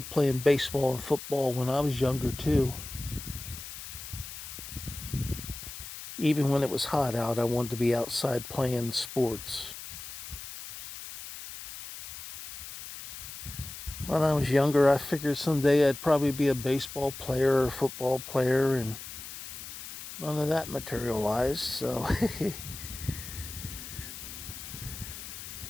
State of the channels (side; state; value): left; noise; hiss, 11 dB below the sound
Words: playing baseball and football when I was younger too. Even when it was hot out, I wanted to be outside playing sports. When I was younger, I figured someday I'd probably be a baseball player or a football player, and none of that materialized, so